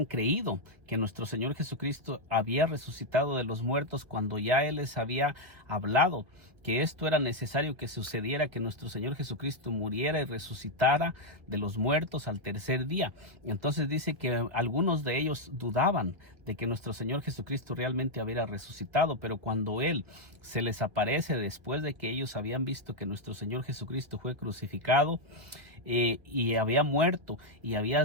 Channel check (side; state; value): left; late; 2.2 ms